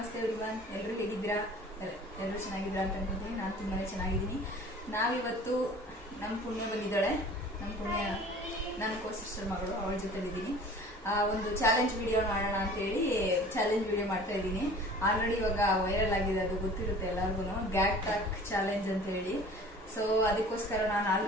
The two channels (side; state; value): both; normal; correlation 0.45